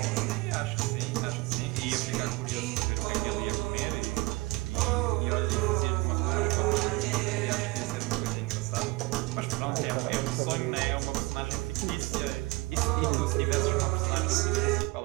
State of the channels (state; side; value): quieter; left; 22.6 dB